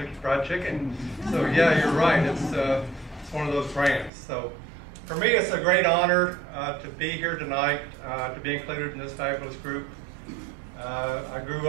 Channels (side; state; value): left; drops out; at 4.1 s